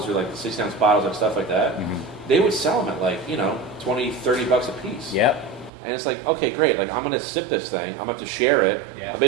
or like the 16-ounce bottles and stuff like that. Mm-hmm. They would sell them at like $20, $30 a piece. Yep. And it's like, okay, great. Like I'm gonna sip this thing. I'm gonna have to share it. Yeah. I'm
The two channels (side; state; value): left; drops out; at 5.7 s